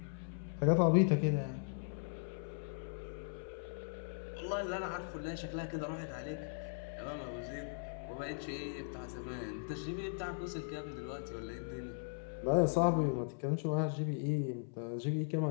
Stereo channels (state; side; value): silent; right; 52 dB below the other